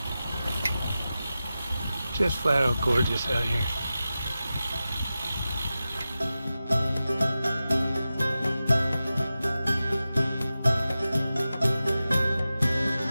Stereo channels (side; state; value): both; inverted; correlation -0.94